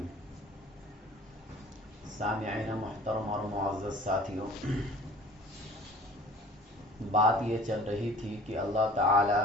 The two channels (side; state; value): both; normal; correlation 0.48